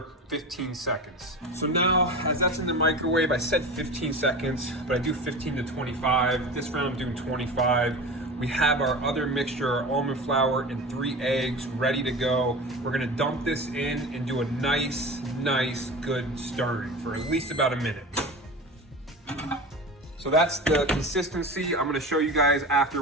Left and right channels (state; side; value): normal; both; correlation 0.31